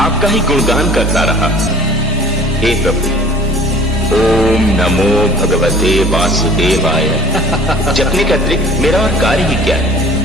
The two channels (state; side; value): normal; both; correlation 0.49